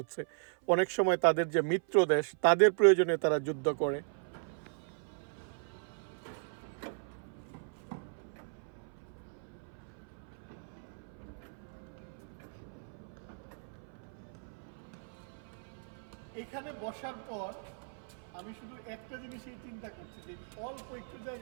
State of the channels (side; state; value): left; silent; 53 dB below the other